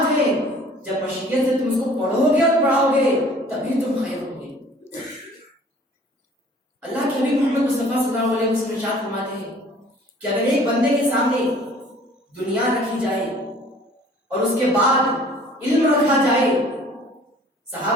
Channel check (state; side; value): normal; both; correlation 0.52